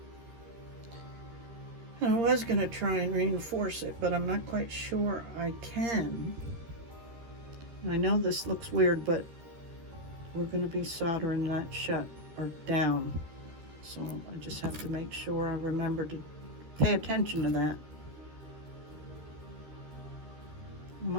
I was going to try and reinforce it, but I'm not quite sure I can. And I know this looks weird, but we're going to be soldering that shut or down. So I just have to make sure I remember to pay attention to that. Am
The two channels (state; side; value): late; left; 13 ms